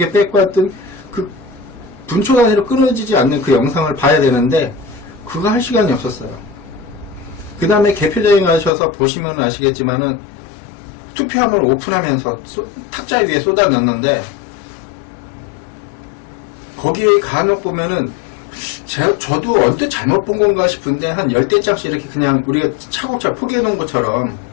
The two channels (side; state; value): right; drops out; at 8.7 s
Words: 뺏고 했던 그 분초 단위로 끊어지지 않는 그 영상을 봐야 되는데 그거 할 시간이 없었어요. 그 다음에 개표장에 가셔서 보시면 아시겠지만은 투표함을 오픈하면서 탁자 위에 쏟아 넣는데 거기에 간혹 보면은 저도 언뜻 잘못 본 건가 싶은데 한 10대장씩 이렇게 그냥 우리가 차곡차곡 포개해 놓은 것처럼